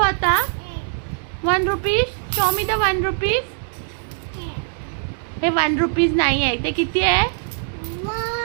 आता. 1 rupees, show me the 1 rupees. हे 1 रुपीज नाही आहे, ते किती आहे?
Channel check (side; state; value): left; silent; 64 dB below the other